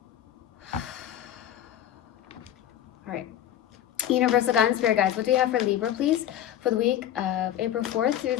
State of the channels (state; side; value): quieter; right; 11.3 dB